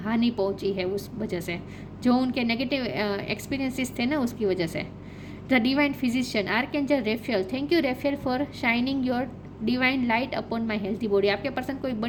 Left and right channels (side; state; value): both; identical; correlation 1.00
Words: पहुंची है उस वजह से, जो उनके नेगेटिव एक्सपीरियंसेस थे ना, उसकी वजह से। The divine physician, archangel रेफेल, thank you रेफेल for shining your divine light upon my healthy body. आपके पर्सन कोई